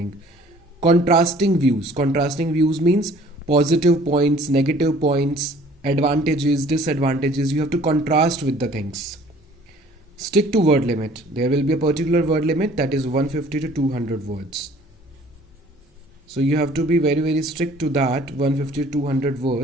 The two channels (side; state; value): both; normal; correlation 0.53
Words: Contrasting views. Contrasting views means positive points, negative points, advantages, disadvantages. You have to contrast with the things. Stick to word limit. There will be a particular word limit, that is 150 to 200 words. So you have to be very, very strict to that, 150 to 200